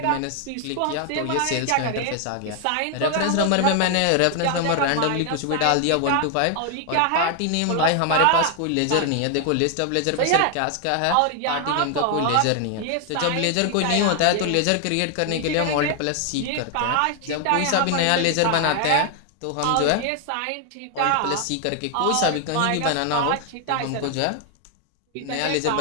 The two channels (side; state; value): both; different; correlation 0.00